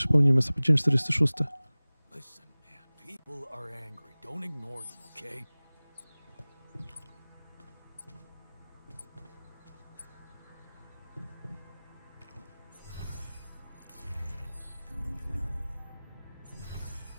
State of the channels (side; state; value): both; inverted; correlation -0.99